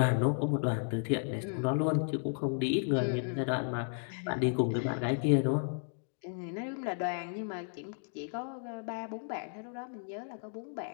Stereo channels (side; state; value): right; silent; 55 dB below the other